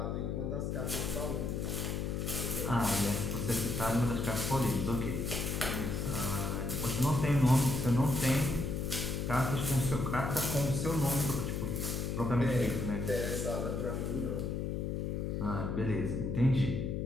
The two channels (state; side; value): noise; left; hum, 1 dB below the sound